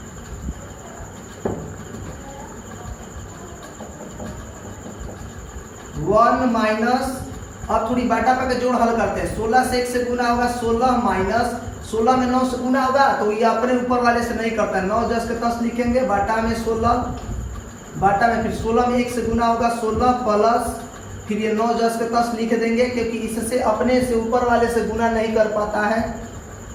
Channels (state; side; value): identical; both; correlation 1.00